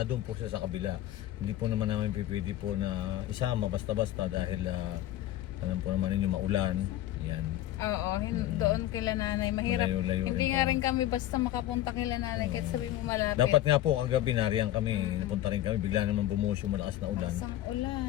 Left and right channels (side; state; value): right; quieter; 13.7 dB